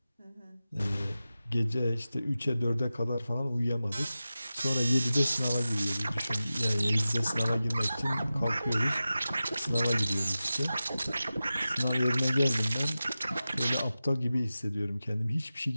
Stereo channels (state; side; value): inverted; both; correlation -0.94